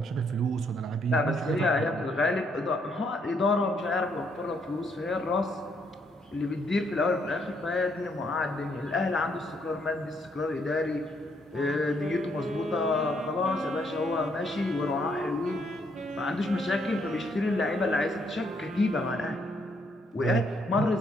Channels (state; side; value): normal; both; correlation 0.72